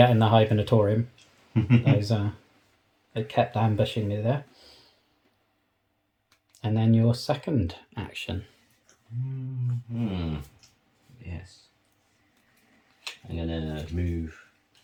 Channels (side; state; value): both; identical; correlation 1.00